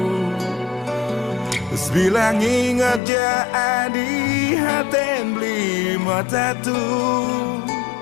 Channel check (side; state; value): right; drops out; at 3.0 s